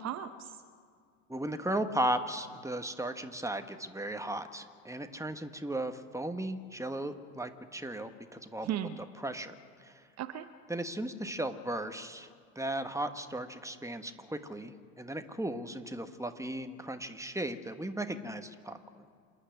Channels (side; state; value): both; normal; correlation 0.57